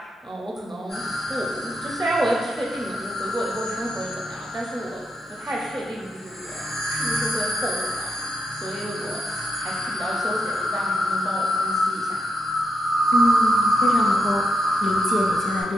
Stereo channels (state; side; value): normal; both; correlation 0.83